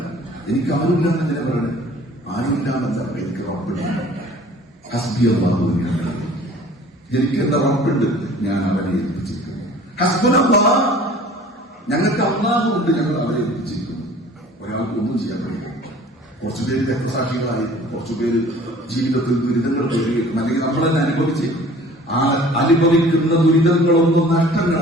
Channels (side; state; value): both; normal; correlation 0.48